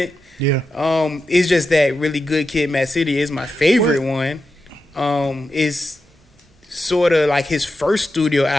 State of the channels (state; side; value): normal; both; correlation 0.89